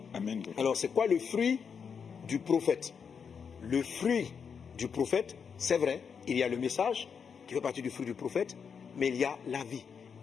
Amen. Alors c'est quoi le fruit du prophète? Le fruit du prophète, c'est vrai, il y a le message qui fait partie du fruit du prophète, mais il y a la vie.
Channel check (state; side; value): quieter; right; 6.5 dB